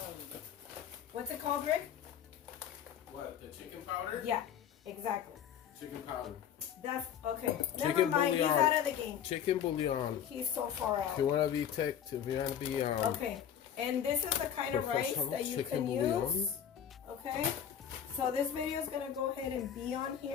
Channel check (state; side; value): quieter; right; 9.1 dB